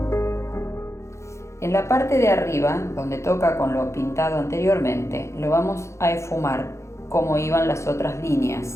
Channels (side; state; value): right; late; 0.14 ms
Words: En la parte de arriba, donde toca con lo pintado anteriormente, lo vamos a esfumar como iban las otras